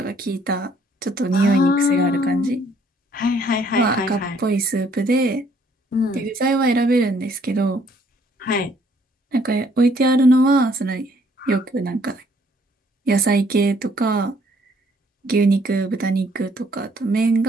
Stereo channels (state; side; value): normal; both; correlation 0.64